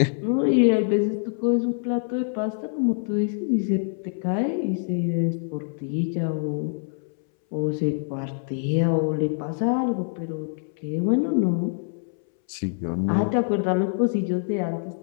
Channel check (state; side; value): silent; right; 62 dB below the other